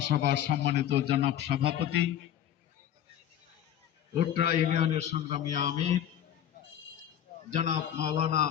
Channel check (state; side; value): quieter; right; 10.5 dB